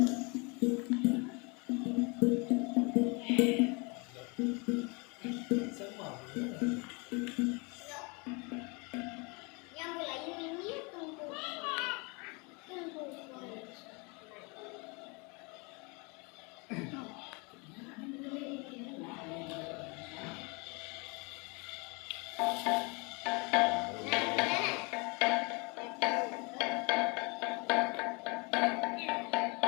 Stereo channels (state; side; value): quieter; right; 30.3 dB